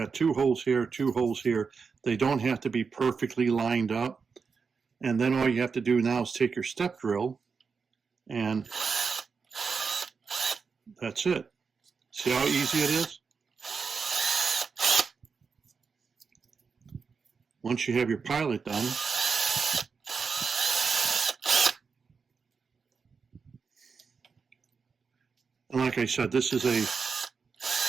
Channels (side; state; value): left; quieter; 5.4 dB